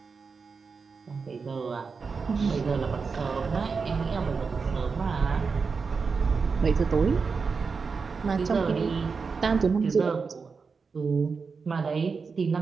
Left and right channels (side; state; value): left; quieter; 5.0 dB